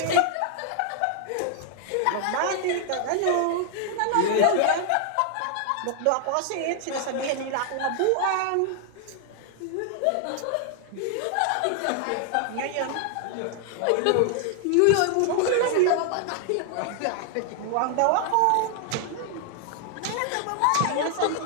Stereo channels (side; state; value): both; different; correlation 0.00